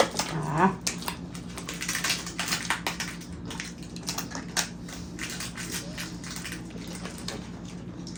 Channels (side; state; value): both; identical; correlation 1.00